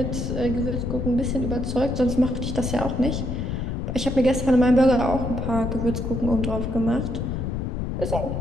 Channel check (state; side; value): noise; left; rumble, 3 dB below the sound